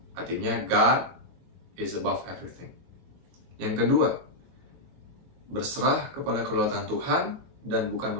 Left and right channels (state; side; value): late; left; 22 ms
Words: Artinya, God is above everything. Yang kedua, berserah kepada kedaulatan Tuhan dan bukan